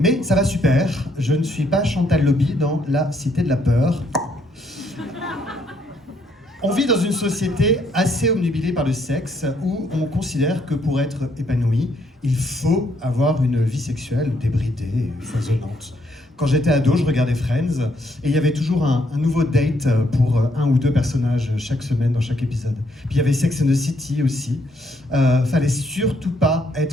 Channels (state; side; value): normal; both; correlation 0.71